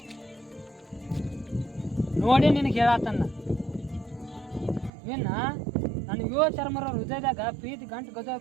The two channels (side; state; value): left; drops out; at 4.9 s